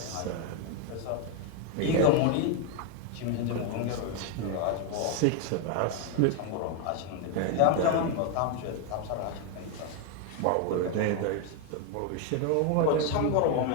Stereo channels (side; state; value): both; different; correlation 0.01